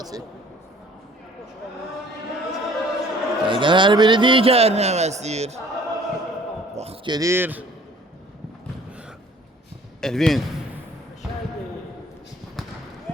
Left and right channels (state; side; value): normal; both; correlation 0.53